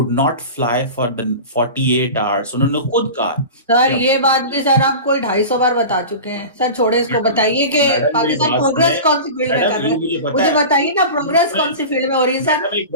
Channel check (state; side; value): inverted; both; correlation -0.32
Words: not fly for the 48 hours. उन्होंने खुद कहा। सर ये बात भी सर आप कोई 250 बार बता चुके हैं। सर छोड़े इसको, बताइए कि पाकिस्तान प्रोग्रेस कौन सी फील्ड में कर रहा है? मुझे बताइए ना, प्रोग्रेस कौन सी फील्ड में हो रही है सर?